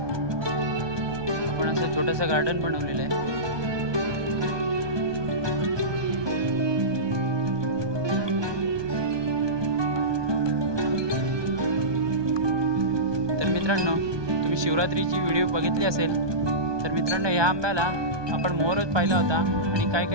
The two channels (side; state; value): left; late; 1.2 ms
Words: आपण असं छोटंसं गार्डन बनवलेलं आहे। तर मित्रांनो, तुम्ही शिवरात्रीची व्हिडिओ बघितली असेल तर मित्रांनो, ह्या आंब्याला आपण मोहरच पाहिला होता आणि काही